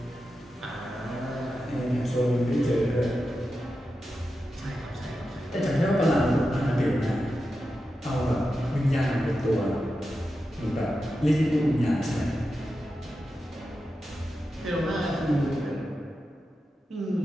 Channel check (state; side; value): normal; both; correlation 0.90